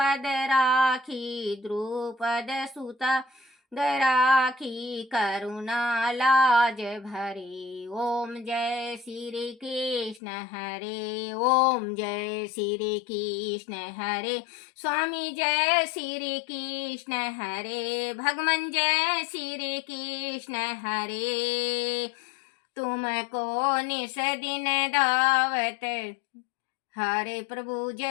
राखी द्रुपद सुत राखी करुणा लाज भरे। ओम जय श्री कृष्ण हरे ओम जय श्री कृष्ण हरे। स्वामी जय श्री कृष्ण हरे भगवान जय श्री कृष्ण हरे। तुमको निस दिन दावत हरे प्रभु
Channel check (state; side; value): drops out; right; at 10.2 s